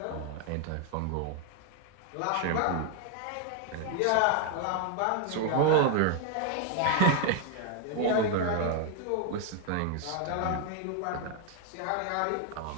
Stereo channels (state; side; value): different; both; correlation 0.00